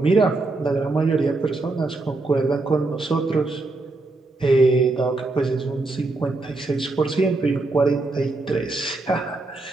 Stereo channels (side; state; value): left; quieter; 3.2 dB